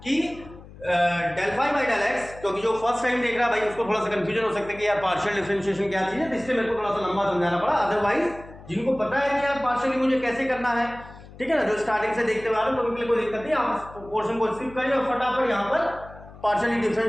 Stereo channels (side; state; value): left; noise; hum, 19 dB below the sound